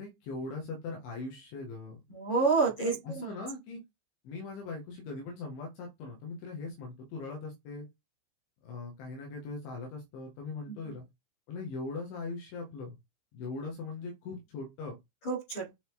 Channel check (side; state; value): right; late; 15 ms